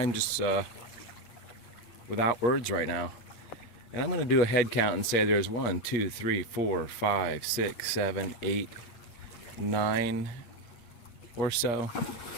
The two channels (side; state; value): right; late; 8.5 ms